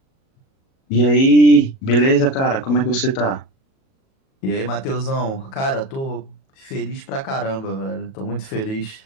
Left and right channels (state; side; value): late; right; 37 ms